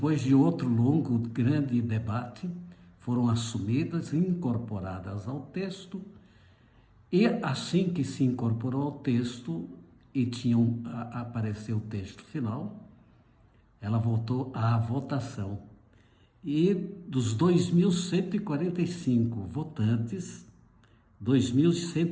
de outro longo, grande debate, foram assumidas e incorporadas ao texto, e assim que se incorporou ao texto e apareceu o texto final, ela voltou à votação. E dos 2.145 votantes,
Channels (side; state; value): both; identical; correlation 1.00